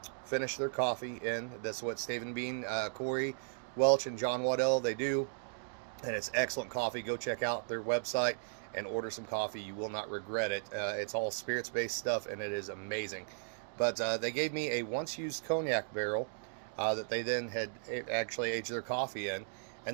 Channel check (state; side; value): silent; left; digital silence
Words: finish their coffee in. That's what Stave and Bean, Corey Welch and John Waddell, they do. And it's excellent coffee. Go check out their website and order some coffee. You will not regret it. It's all spirits-based stuff, and it is amazing. But they gave me a once-used cognac barrel that they then had actually aged their coffee in.